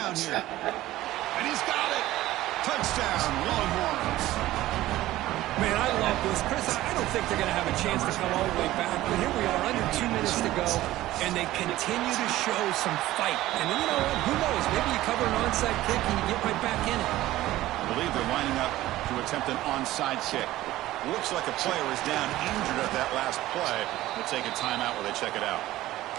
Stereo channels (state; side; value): quieter; left; 15.8 dB